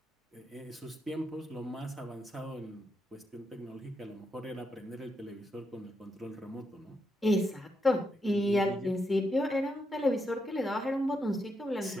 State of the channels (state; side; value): normal; both; correlation 0.82